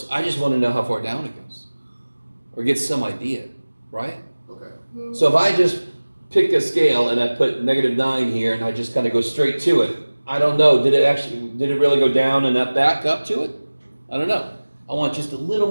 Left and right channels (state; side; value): inverted; both; correlation -1.00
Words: I just want to know how far down it goes, or get some idea, right? Okay. So if I just pick a scale and I put negative 9 here and I just kind of go straight to it, I don't know, did it really go down and up back up to it? I don't know. I want just a little